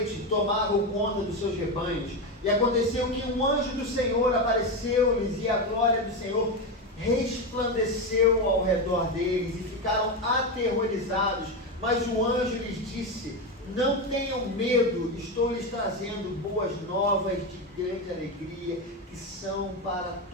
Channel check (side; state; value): both; normal; correlation 0.13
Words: tomavam conta dos seus rebanhos. E aconteceu que um anjo do Senhor apareceu-lhes e a glória do Senhor resplandeceu ao redor deles e ficaram aterrorizados. Mas o anjo lhes disse: não tenham medo, estou lhes trazendo boas novas de grande alegria, que são para